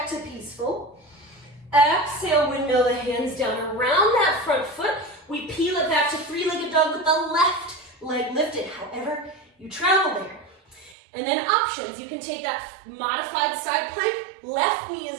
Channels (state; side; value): drops out; left; at 11.0 s